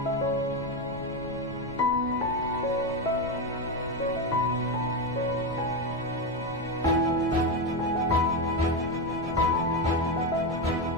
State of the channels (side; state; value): left; noise; rumble, 14 dB below the sound